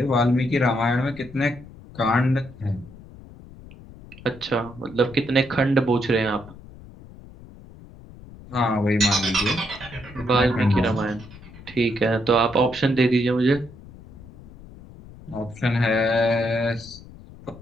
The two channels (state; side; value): noise; left; rumble, 19 dB below the sound